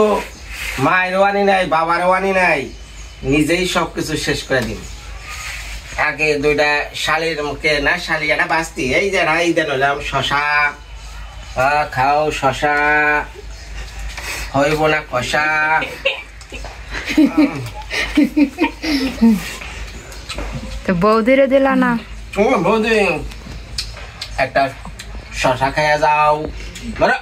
মায়েরও আনি নাই বাবারও আনি নাই নিজেই সবকিছু শেষ করে দিন আগে দুইটা শালির মুখে না শালি একটা বাস্তি এই যে এই দেন হলাম শশা খাও শশা হইব না কষা তো বৌদিরে দিলা না? বৌদি একটা শশা খাইয়া যাও ধরো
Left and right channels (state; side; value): identical; both; correlation 1.00